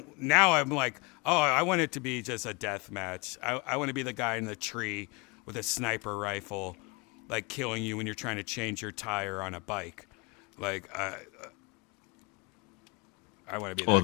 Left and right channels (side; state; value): right; quieter; 28.4 dB